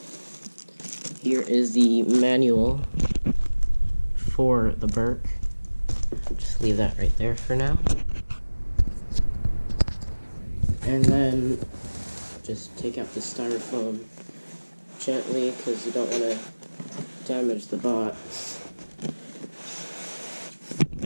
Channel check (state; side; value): inverted; both; correlation -1.00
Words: Here is the manual for the Berk. Just leave that right there for now. And then just take out the styrofoam gently because you don't want to damage the box.